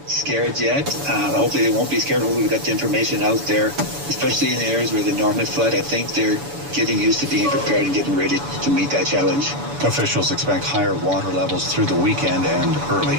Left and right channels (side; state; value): left; late; 7.0 ms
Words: Scared yet. Hopefully they won't be scared. Hopefully we've got the information out there, especially in the areas where the normally flood. I think they're getting used to being prepared and getting ready to meet that challenge. Officials expect higher water levels through the weekend and early